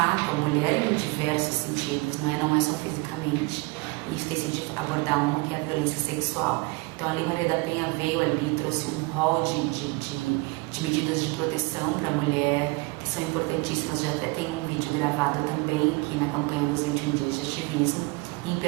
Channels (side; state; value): left; quieter; 25.9 dB